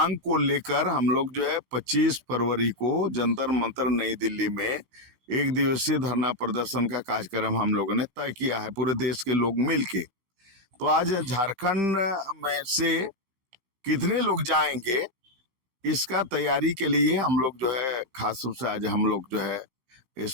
को लेकर हम लोग जो है 25 फरवरी को जंतर मंतर नई दिल्ली में एक दिवसीय धरना प्रदर्शन का कार्यक्रम हम लोगों ने तय किया है, पूरे देश के लोग मिलके। तो आज झारखंड में से कितने लोग जाएंगे इसका तैयारी के लिए हम लोग जो है खास रूप से आज हम लोग जो है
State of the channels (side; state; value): left; late; 15 ms